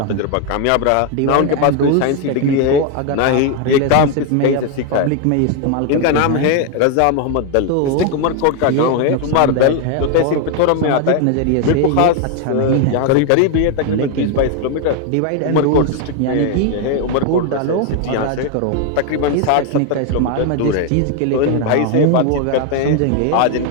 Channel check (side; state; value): both; different; correlation 0.01